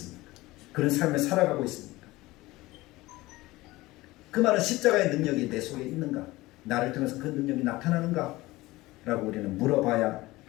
그런 삶을 살아가고 있습니다. 그 말은 십자가의 능력이 내 속에 있는가? 나를 통해서 그 능력이 나타나는가? 라고 우리는 물어봐야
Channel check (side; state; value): right; quieter; 19.4 dB